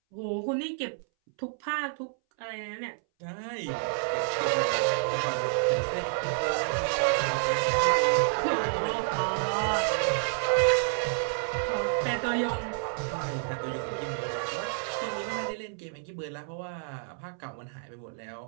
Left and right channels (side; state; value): left; silent; 58 dB below the other